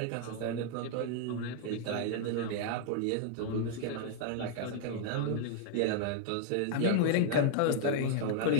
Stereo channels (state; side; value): different; both; correlation 0.00